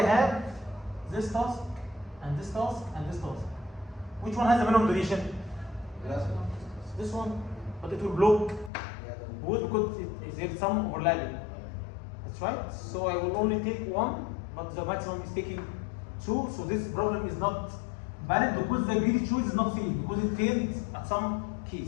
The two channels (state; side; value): drops out; right; at 8.7 s